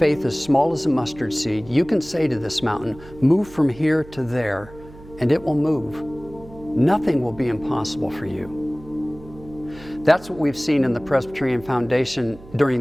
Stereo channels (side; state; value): right; noise; hum, 20 dB below the sound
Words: as small as a mustard seed, you can say to this mountain, 'Move from here to there,' and it will move. Nothing will be impossible for you." That's what we've seen in the Presbyterian Foundation